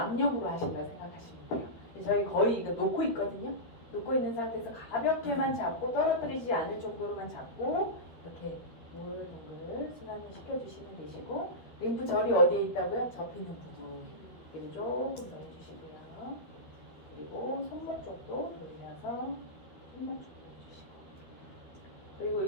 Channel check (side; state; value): right; late; 13 ms